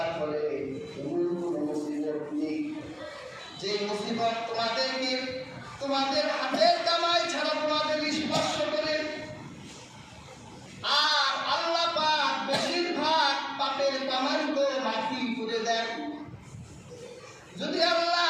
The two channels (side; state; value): both; identical; correlation 1.00